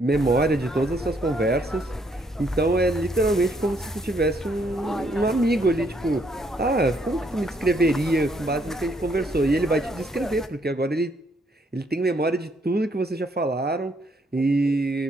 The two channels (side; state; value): both; normal; correlation 0.70